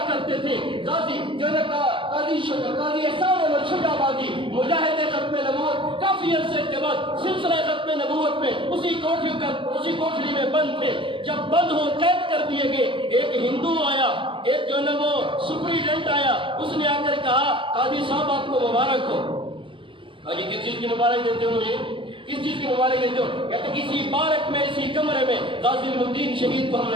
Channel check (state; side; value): late; left; 0.25 ms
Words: کرتے تھے، غازی جو ہے قاضی احسان احمد شجاع آبادی مجاہد ختم نبوت کافی عرصے کے بعد سلسلہ ختم نبوت میں اسی کوٹھری میں بند تھے، جب بند ہو قید کر دیے گئے، ایک ہندو آیا، ایک جو ہے وہ سپریڈنٹ آیا، اس نے آ کر کہا قاضی صاحب آپ کو مبارک ہو۔ قاضی کس چیز کی مبارک دیتے ہو مجھے؟ کس چیز کی مبارک دیتے ہو؟ کہتے اسی بارک میں، اسی کمرے میں غازی الدین شہید کو ہم